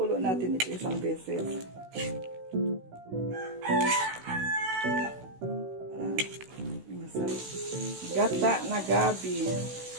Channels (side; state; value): left; late; 16 ms